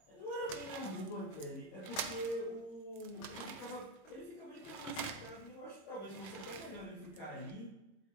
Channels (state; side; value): late; right; 26 ms